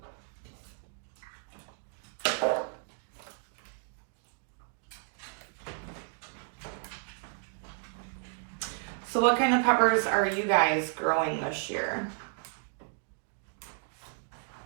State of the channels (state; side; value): silent; left; 56 dB below the other